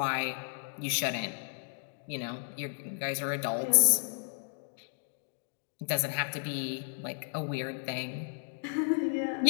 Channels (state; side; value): silent; right; digital silence